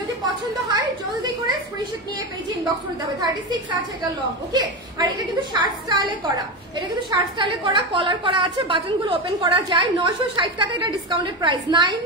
পছন্দ হয় জলদি করে স্ক্রিনশট নিয়ে পেজে ইনবক্স করে দিতে হবে। 36 আছে এটা লং, ওকে? আর এটা কিন্তু শার্ট স্টাইলে করা, এটা কিন্তু শার্ট স্টাইলে করা, কলার করা আছে, বাটনগুলো ওপেন করা যায়। 960 টাকা এটা ডিসকাউন্টেড প্রাইস,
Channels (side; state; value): both; normal; correlation 0.17